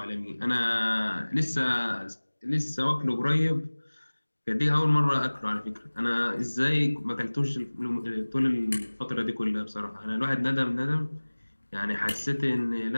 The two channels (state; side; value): inverted; both; correlation -1.00